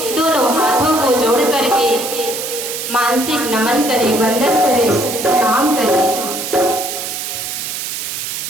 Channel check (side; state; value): right; noise; hiss, 5 dB below the sound